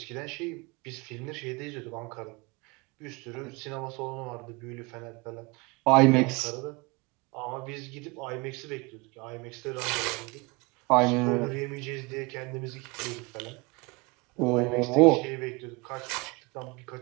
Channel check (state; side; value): quieter; left; 26.5 dB